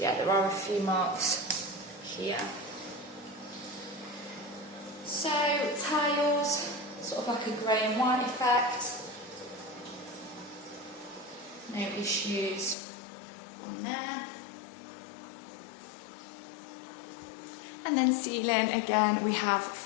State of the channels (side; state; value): right; drops out; at 12.8 s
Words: there are a few marks here. So tiles, sort of like a grey and white effect. No issues on there. And then ceiling, again, we have